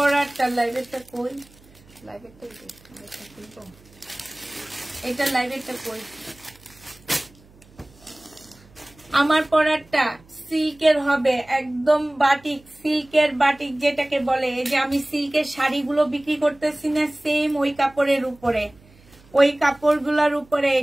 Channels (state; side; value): noise; right; hum, 27 dB below the sound